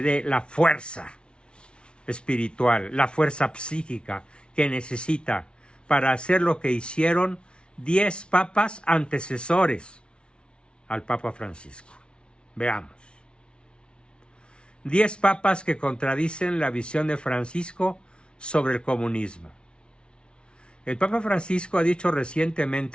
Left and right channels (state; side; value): late; right; 0.057 ms